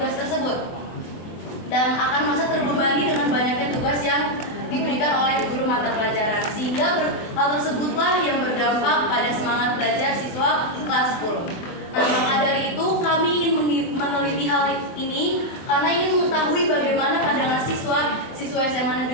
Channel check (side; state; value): right; late; 24 ms